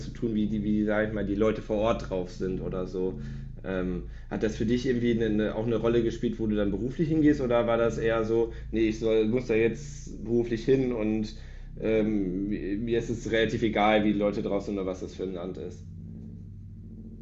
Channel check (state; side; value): identical; both; correlation 1.00